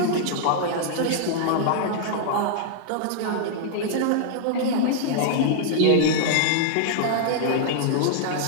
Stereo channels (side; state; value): both; different; correlation -0.01